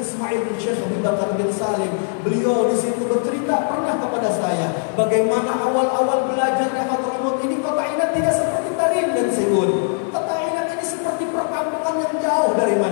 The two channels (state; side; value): silent; right; 64 dB below the other